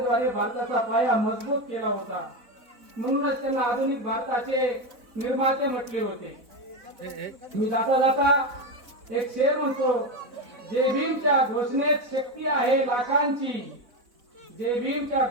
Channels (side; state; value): left; late; 4.0 ms